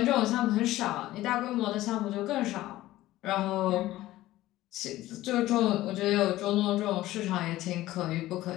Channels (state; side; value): quieter; right; 15.9 dB